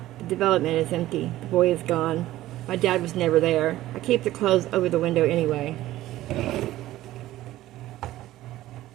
The development is empty. The boy is gone. My dad was never there. I keep the clothes over the window anyway.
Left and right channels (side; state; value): left; quieter; 15.3 dB